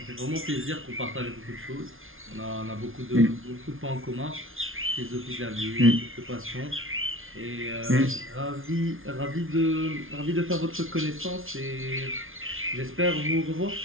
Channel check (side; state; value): left; late; 0.60 ms